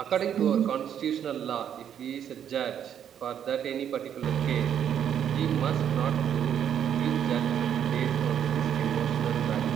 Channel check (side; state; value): left; quieter; 9.1 dB